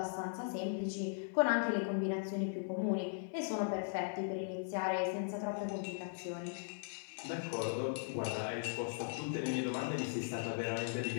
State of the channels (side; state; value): right; silent; digital silence